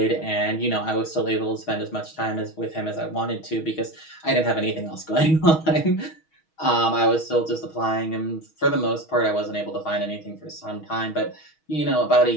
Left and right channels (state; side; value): late; right; 6.3 ms